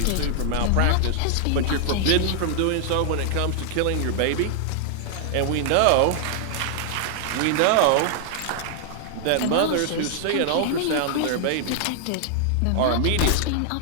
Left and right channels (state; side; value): different; both; correlation 0.00